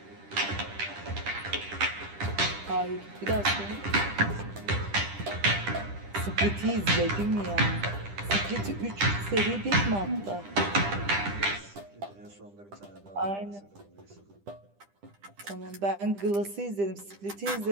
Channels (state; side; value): late; left; 10 ms